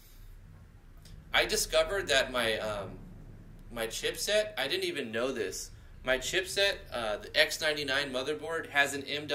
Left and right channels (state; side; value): identical; both; correlation 1.00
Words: I discovered that my my chipset, I didn't even know this. My chipset, the X99 motherboard, has an